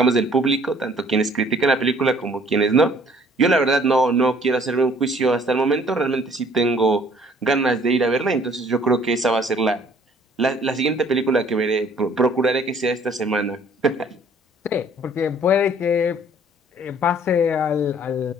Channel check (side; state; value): both; normal; correlation 0.58